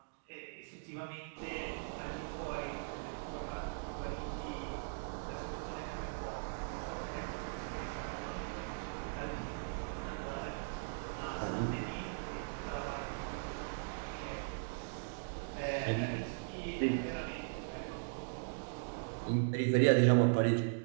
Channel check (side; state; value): left; silent; digital silence